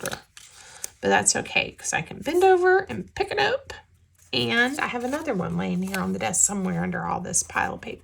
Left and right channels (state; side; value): identical; both; correlation 1.00